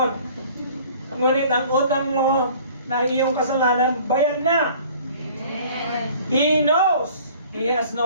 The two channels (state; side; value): inverted; both; correlation -0.51